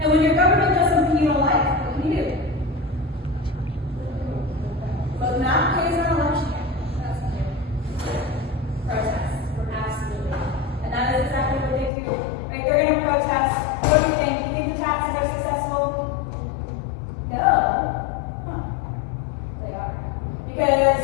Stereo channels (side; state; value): right; drops out; at 11.9 s